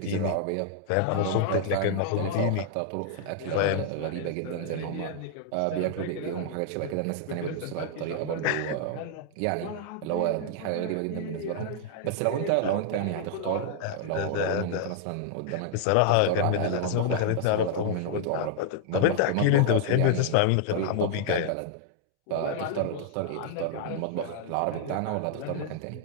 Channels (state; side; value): different; both; correlation -0.01